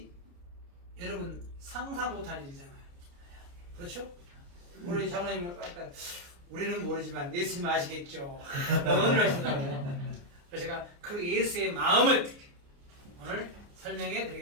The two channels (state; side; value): late; left; 29 ms